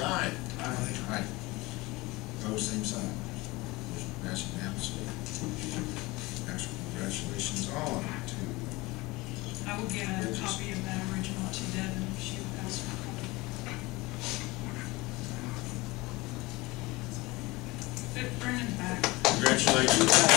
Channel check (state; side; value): quieter; right; 22.1 dB